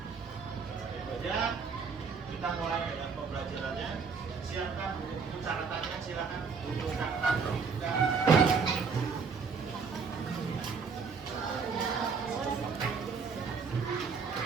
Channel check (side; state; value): left; quieter; 5.4 dB